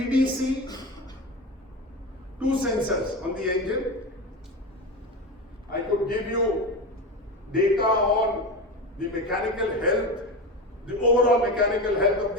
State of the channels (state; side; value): normal; both; correlation 0.23